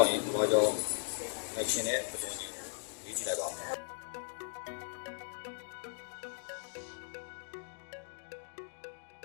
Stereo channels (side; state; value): right; silent; digital silence